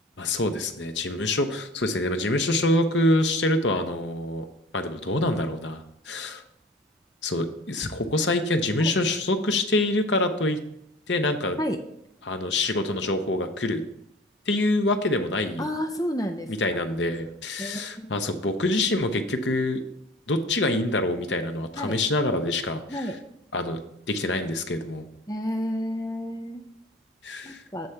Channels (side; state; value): both; normal; correlation 0.44